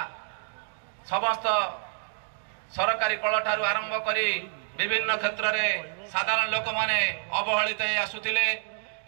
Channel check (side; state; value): left; silent; 59 dB below the other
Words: समस्त सरकारी कल ठारू आरंभ करी विभिन्न क्षेत्र में साधारण लोक माने अवहेलित आसुथिले